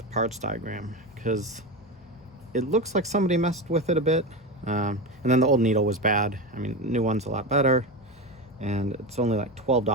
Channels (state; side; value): normal; both; correlation 0.20